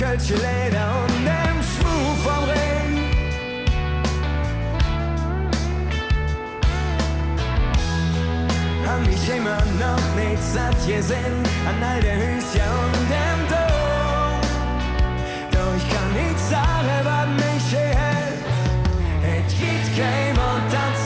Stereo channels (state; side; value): identical; both; correlation 1.00